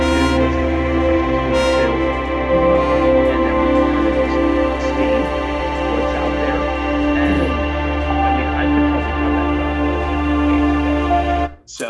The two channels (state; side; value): identical; both; correlation 1.00